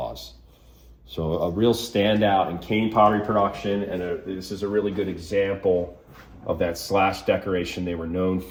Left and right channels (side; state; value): both; identical; correlation 1.00